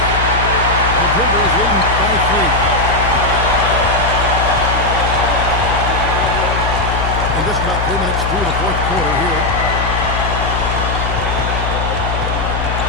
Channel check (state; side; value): noise; left; hum, 3 dB below the sound